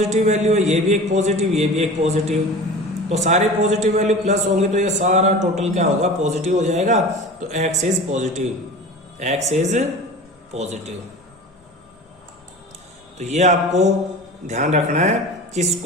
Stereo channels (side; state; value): both; normal; correlation 0.36